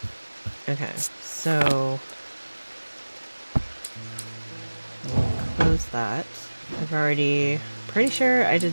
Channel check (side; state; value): both; inverted; correlation -1.00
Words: Okay, so we'll close that. I've already, pretty sure I